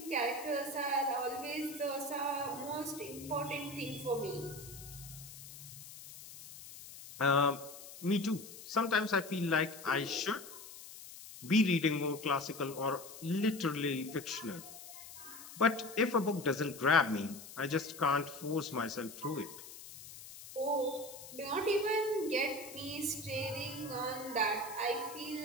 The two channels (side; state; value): left; noise; hiss, 15 dB below the sound